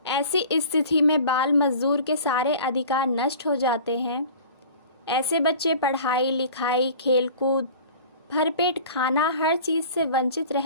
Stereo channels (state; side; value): inverted; both; correlation -0.42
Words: ऐसी स्थिति में बाल मजदूर के सारे अधिकार नष्ट हो जाते हैं। ऐसे बच्चे पढ़ाई लिखाई, खेलकूद, भरपेट खाना, हर चीज़ से वंचित